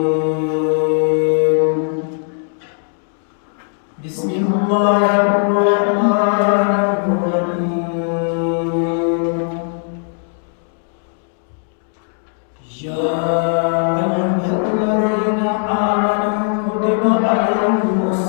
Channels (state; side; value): silent; right; 58 dB below the other